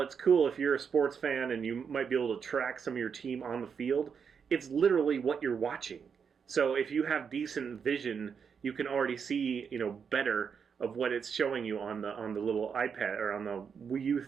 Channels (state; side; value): quieter; left; 6.6 dB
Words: it's cool if you're a sports fan and you might be able to track some of your team on the field, it's literally what you're watching. So if you have decent vision, you can already see, better of what it's showing you on the little iPad or on the Wii U